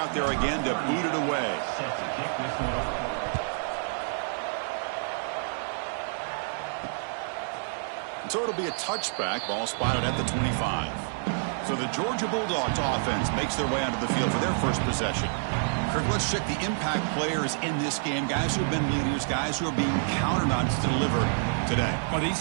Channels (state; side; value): silent; left; 59 dB below the other